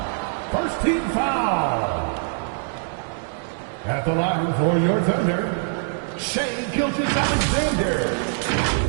First team foul. At the line for your Thunder, Shai Gilgeous-Alexander.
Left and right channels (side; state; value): left; silent; 63 dB below the other